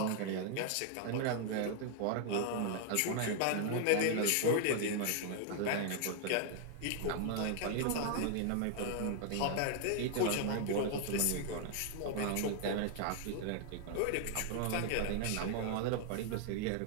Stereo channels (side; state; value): both; different; correlation 0.00